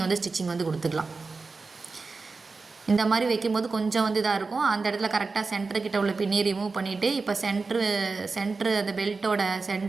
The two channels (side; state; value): left; quieter; 4.1 dB